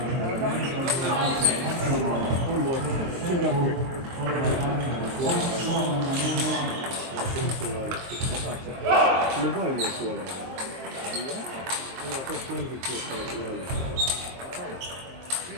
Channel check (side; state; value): left; late; 23 ms